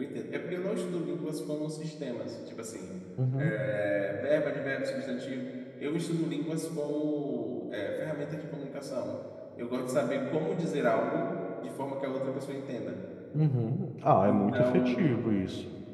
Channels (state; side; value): identical; both; correlation 1.00